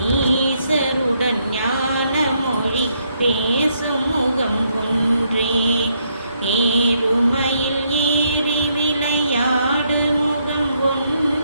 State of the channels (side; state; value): both; inverted; correlation -0.75